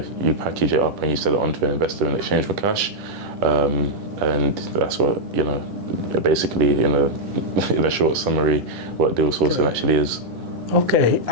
package it up and you sell it on to an investor in exchange for cash. And that's what, basically in a short summary, what deal sourcing actually is. Okay,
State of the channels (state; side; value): late; left; 10 ms